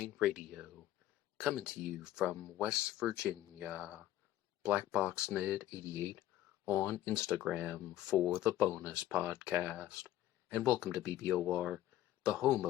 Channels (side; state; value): right; quieter; 13.5 dB